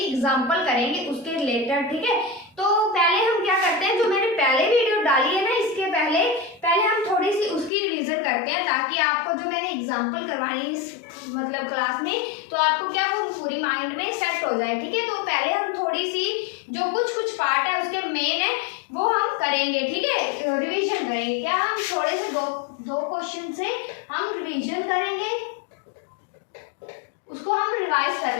एग्जांपल करेंगे उसके रिलेटेड। ठीक है, तो पहले हम क्या करते हैं, जो मैंने पहले वीडियो डाली है ना, इसके पहले हम थोड़ी सी उसकी रिवीजन करते हैं, ताकि आपको जो मैंने एग्जांपल करवाई इस मतलब क्लास में, तो आपको क्या वो पूरी माइंड में सेट हो जाए। ठीक है, तो पहले हम थोड़ी सी जो कुछ पार्ट है उसके मेन है वो हम करेंगे। ठीक है, रिविजन करेंगे। क्या हम थोड़े से दो क्वेश्चन से हम रिविजन करेंगे, उसको हम रिवाइज कर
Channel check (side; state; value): right; drops out; at 7.7 s